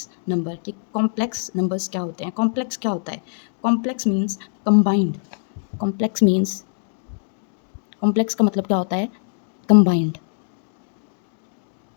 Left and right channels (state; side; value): silent; right; digital silence